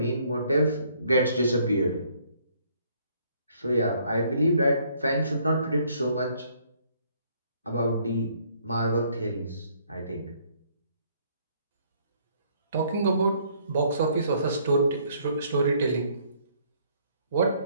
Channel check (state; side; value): inverted; both; correlation -0.65